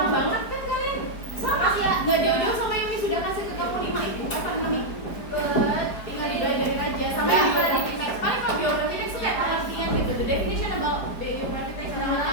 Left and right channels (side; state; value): right; late; 4.8 ms